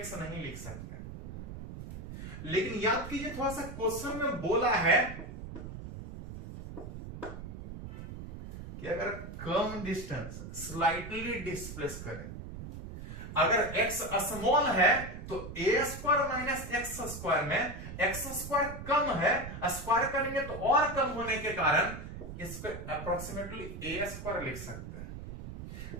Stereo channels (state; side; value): noise; right; rumble, 10 dB below the sound